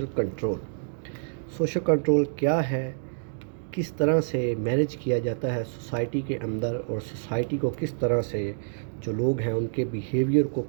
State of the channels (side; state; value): left; silent; digital silence